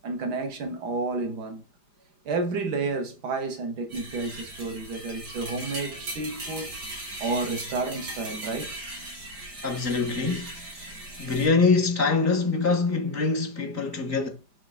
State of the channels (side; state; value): left; late; 5.0 ms